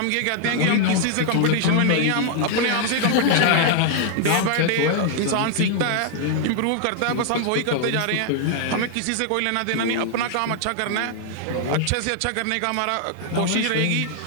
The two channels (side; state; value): both; different; correlation 0.00